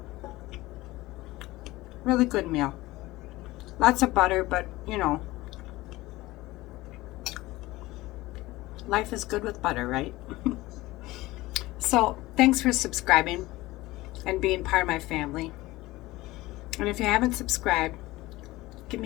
Really good meal. Lots of butter, but you know, life is good with butter, right? So, thanks for subscribing and being part of my family. And if you haven't subscribed, give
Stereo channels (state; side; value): quieter; right; 18.9 dB